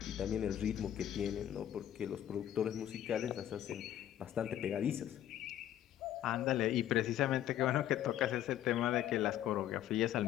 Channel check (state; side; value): quieter; right; 11.6 dB